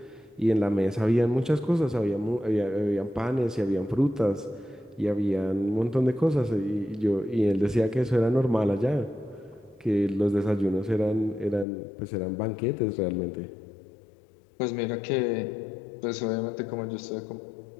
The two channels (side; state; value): right; drops out; at 11.7 s